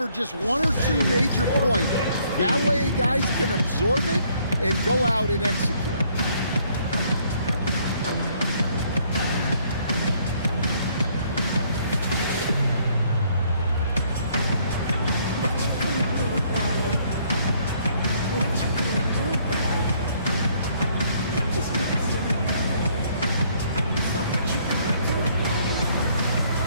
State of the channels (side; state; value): both; inverted; correlation -0.66